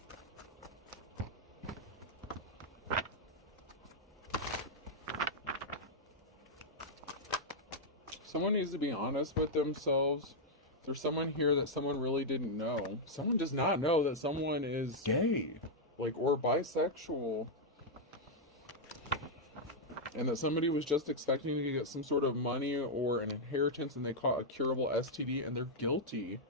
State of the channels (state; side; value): normal; both; correlation -0.04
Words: Someone needs to be honest with themselves. There's someone here that someone really didn't know. Someone does not know that someone is gay, like, or bisexual. and that somebody was just expecting to get some sort of money or an inheritance, and they caught a curable STD, and they're guilty.